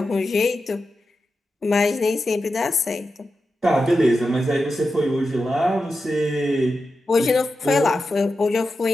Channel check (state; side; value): normal; both; correlation 0.90